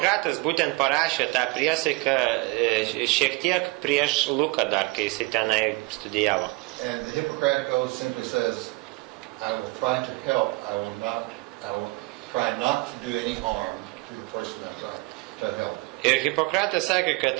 būtent parašė tą priesaiką šiek tiek prieš Luką dar, kai jisai tenai studijavo. And the Hippocratic Oath simply says, I will try to help, I will try not to do any harm to the person I try to help. Ir Hipokratas sakė, kad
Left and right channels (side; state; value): left; quieter; 25.0 dB